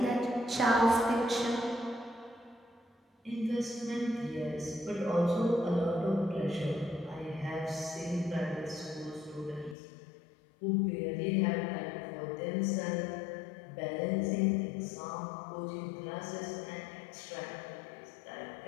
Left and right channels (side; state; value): right; drops out; at 9.8 s